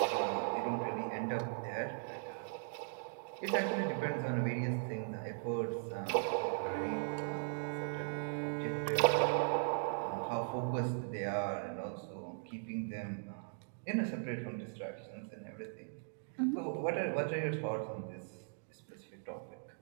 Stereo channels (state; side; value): silent; left; digital silence